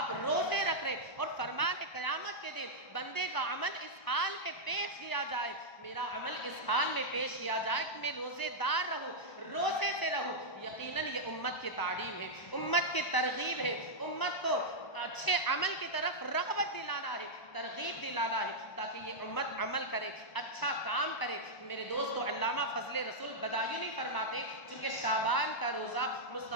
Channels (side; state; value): right; late; 1.0 ms